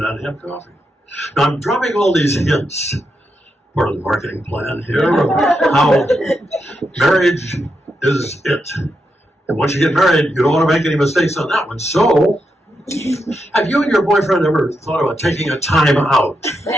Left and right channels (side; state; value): both; normal; correlation 0.84